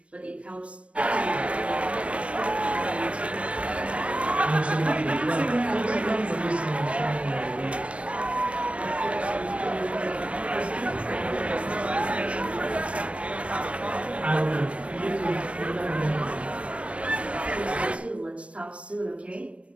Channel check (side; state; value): left; late; 0.062 ms